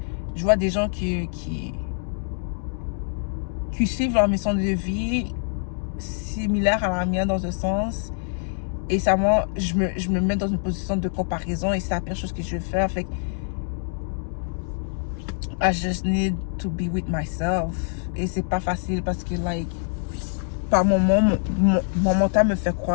je vois des gens qui suivent leur mission de vie similaire à la mienne dans un sens. Et ça, moi, je me mets dans une position de comparaison et c'est la pire chose que je vais faire. Fait que I just need to be with myself. Et c'est pas facile parce que, like, par moment, mon mental me fait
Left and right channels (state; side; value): silent; right; digital silence